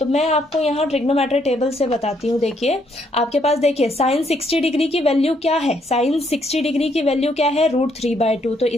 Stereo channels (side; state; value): both; normal; correlation 0.71